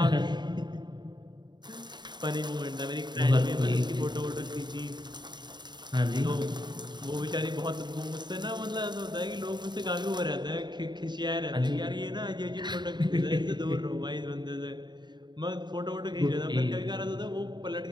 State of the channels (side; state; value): left; late; 0.21 ms